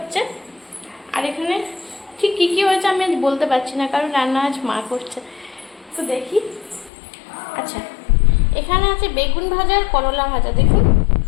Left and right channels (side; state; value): right; drops out; at 6.9 s